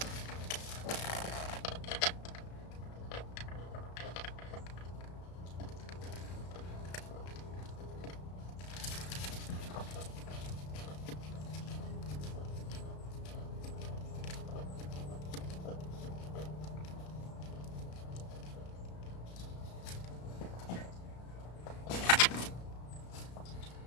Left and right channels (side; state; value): right; late; 34 ms